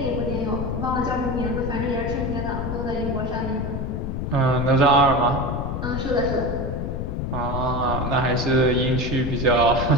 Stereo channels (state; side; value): noise; left; rumble, 3 dB below the sound